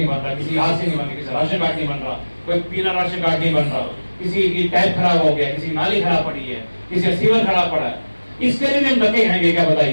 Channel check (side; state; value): both; inverted; correlation -1.00